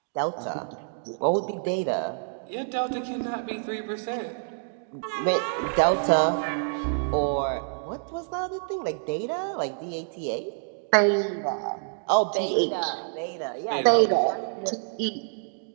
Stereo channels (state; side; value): silent; left; digital silence